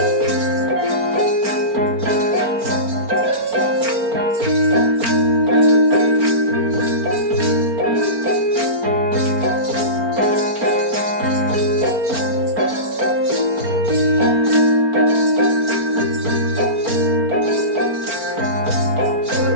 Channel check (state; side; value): late; left; 4.4 ms